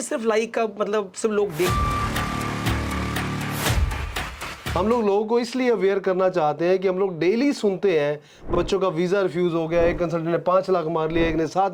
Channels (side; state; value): both; identical; correlation 1.00